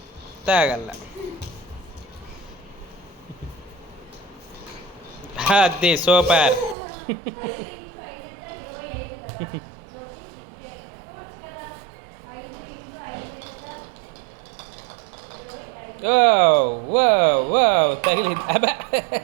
తాగల. అది సూపర్. తగిలింది. అబ్బా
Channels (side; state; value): left; drops out; at 6.8 s